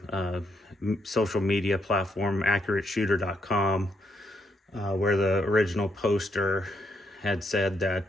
social media platform, AccurateShooter.com, where the original poster had said that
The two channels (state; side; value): normal; both; correlation 0.77